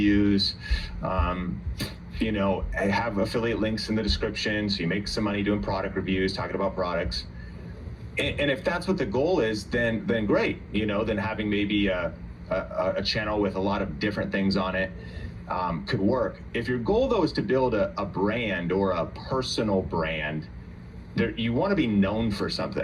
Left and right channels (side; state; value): both; identical; correlation 1.00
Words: have affiliate links in the description, so you make some money doing product reviews, talking about products. And if that's what the goal is, then great. Then having maybe a channel with a lot of different things on it could work. If your goal though is to build a brand or a personal brand, you want to be known for